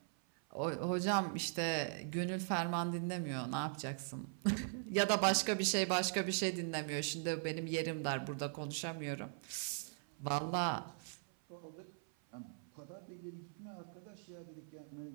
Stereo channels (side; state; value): left; silent; 51 dB below the other